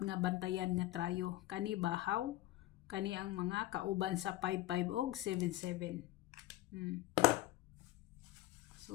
nga bantayan nga trayo. Kani bahaw, kani ang mga kauban sa 55 og 77.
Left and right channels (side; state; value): right; quieter; 16.4 dB